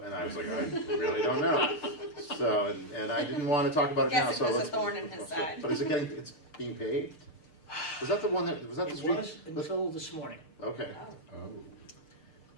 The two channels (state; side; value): late; right; 6.6 ms